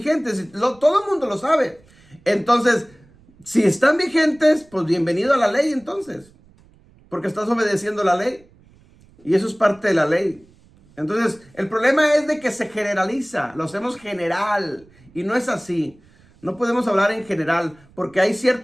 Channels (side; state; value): right; noise; rumble, 28 dB below the sound